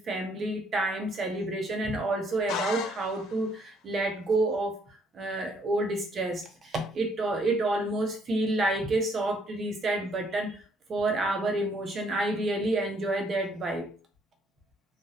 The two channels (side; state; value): both; normal; correlation 0.66